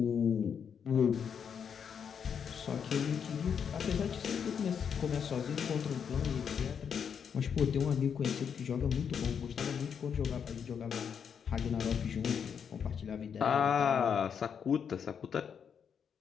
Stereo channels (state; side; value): quieter; right; 7.3 dB